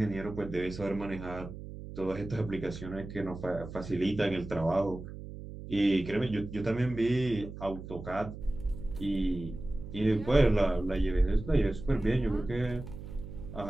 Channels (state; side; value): noise; right; hum, 11 dB below the sound